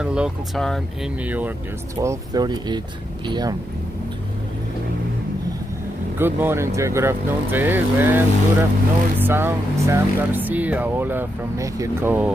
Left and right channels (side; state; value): both; normal; correlation 0.83